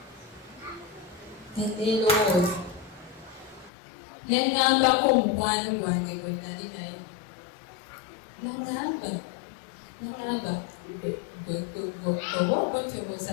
neerowooza nengambako omukwano gwange gwe nali naye nangamba oba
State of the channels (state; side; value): drops out; right; at 3.7 s